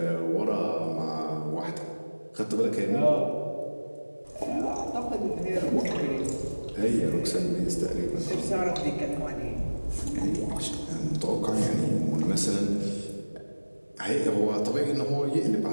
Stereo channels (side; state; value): both; inverted; correlation -1.00